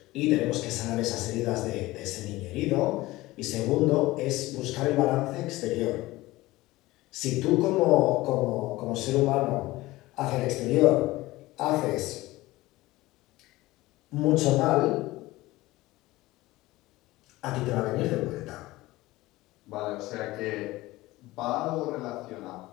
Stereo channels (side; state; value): right; quieter; 18.8 dB